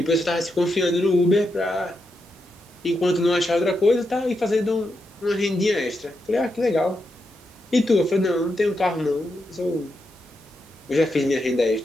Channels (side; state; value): both; normal; correlation 0.84